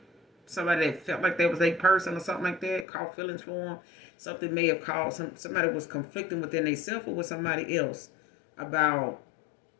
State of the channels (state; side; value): drops out; right; at 2.9 s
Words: somebody that felt like that was a person or something like that, caught feelings for them. Something may have caused somebody was conflicting within themselves or with somebody else about